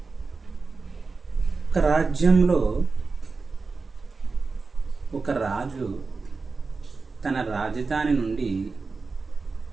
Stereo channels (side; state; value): left; quieter; 4.2 dB